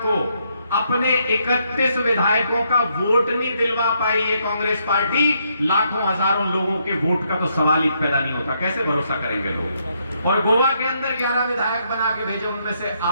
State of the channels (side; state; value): both; inverted; correlation -0.75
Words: अपने 31 विधायकों का वोट नहीं दिलवा पाई ये कांग्रेस पार्टी। लाखों हजारों लोगों के वोट का तो सवाल ही पैदा नहीं होता, कैसे भरोसा करेंगे लोग। और गोवा के अंदर 11 विधायक बना के भेजे, उनमें से